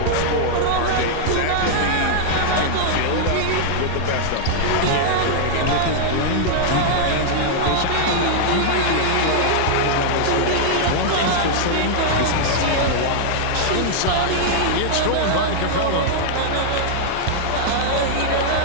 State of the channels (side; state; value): both; different; correlation -0.01